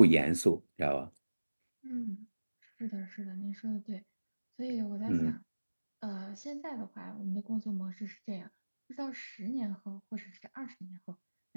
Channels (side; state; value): both; inverted; correlation -1.00